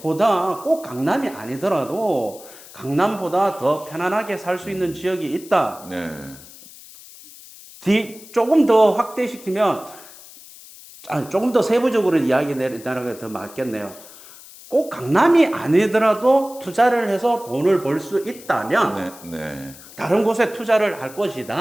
꼭 강남이 아니더라도 강남보다 더 편안하게 살 수 있는 지역이 있다. 네. 조금 더 확대시키면 조금 더 세부적으로 이야기 내리는 게 더 맞겠네요. 꼭 강남이 아니더라도 투자를 해서 돈을 벌 수 있다면 네. 네. 다른 곳에 투자를 할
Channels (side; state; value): left; noise; hiss, 19 dB below the sound